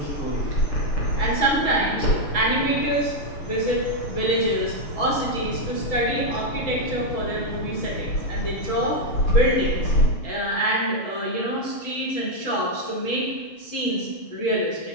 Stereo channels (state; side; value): late; right; 6.2 ms